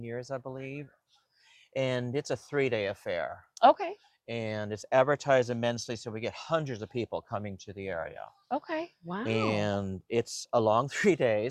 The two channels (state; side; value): identical; both; correlation 1.00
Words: years, I believe. And it's a 3-day affair. Okay. and it's advertised immensely, so we get hundreds of people coming to the area. Okay. Wow. And it's a long 3